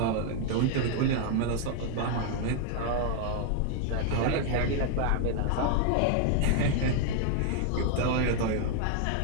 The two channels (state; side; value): different; both; correlation 0.00